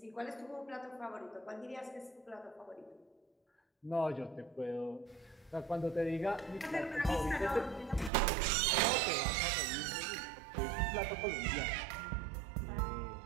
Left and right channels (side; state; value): left; drops out; at 8.1 s